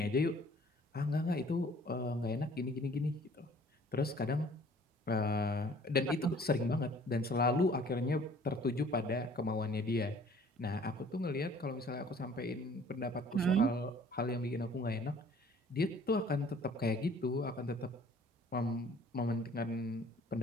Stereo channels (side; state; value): both; normal; correlation 0.54